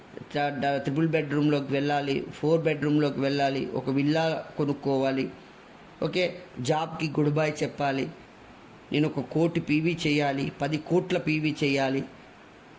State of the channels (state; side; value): identical; both; correlation 1.00